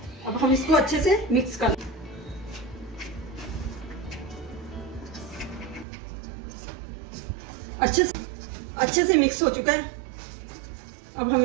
अब हम इसको अच्छे से मिक्स कर अच्छे से मिक्स हो चुका है। अब हम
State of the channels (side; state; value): left; drops out; at 5.9 s